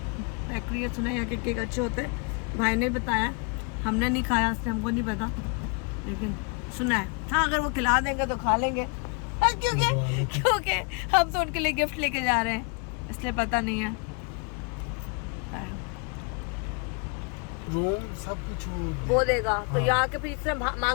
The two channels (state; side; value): quieter; right; 34.8 dB